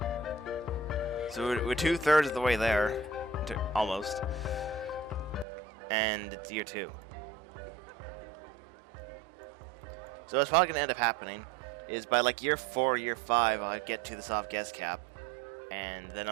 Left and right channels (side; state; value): left; drops out; at 5.5 s